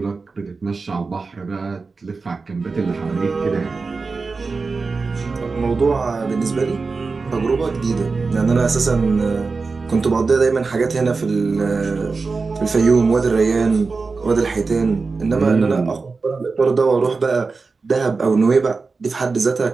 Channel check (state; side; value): quieter; left; 4.3 dB